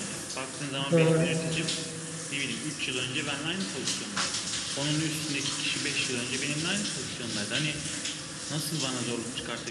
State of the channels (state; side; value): identical; both; correlation 1.00